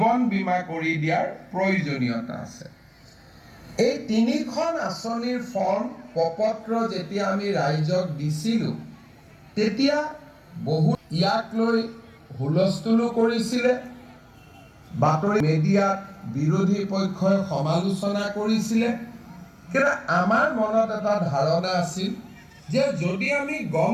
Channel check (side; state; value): both; identical; correlation 1.00